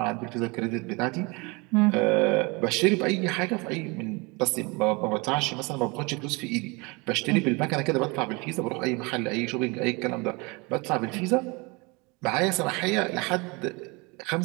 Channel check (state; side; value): quieter; left; 27.4 dB